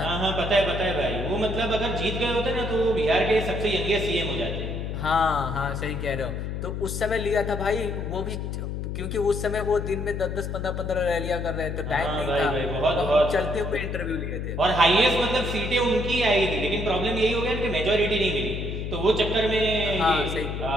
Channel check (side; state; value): left; noise; hum, 4 dB below the sound